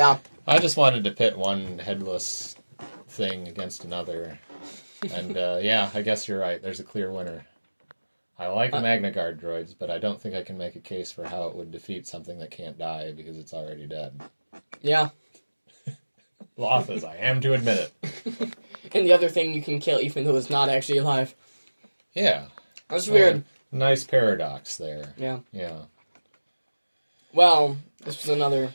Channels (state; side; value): inverted; both; correlation -1.00